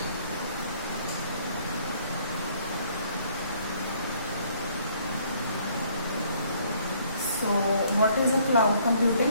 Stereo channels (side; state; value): both; inverted; correlation -0.63